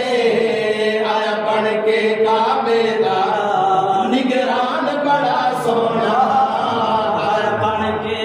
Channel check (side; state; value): both; identical; correlation 1.00